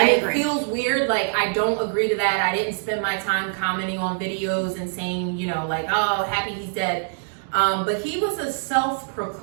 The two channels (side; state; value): left; silent; digital silence